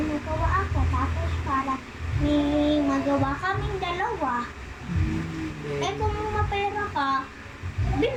magawa ako. Tapos para may magawa kaming dalawa. Kung mapera ka,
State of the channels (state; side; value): identical; both; correlation 1.00